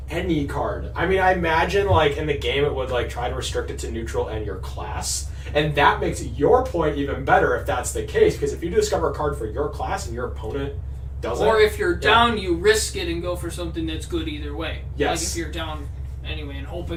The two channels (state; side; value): identical; both; correlation 1.00